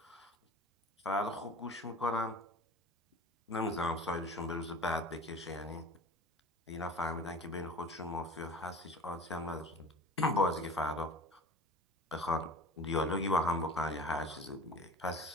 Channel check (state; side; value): normal; both; correlation 0.40